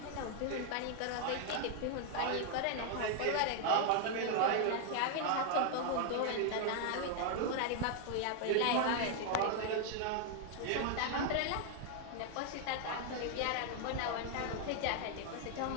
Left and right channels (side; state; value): both; different; correlation 0.00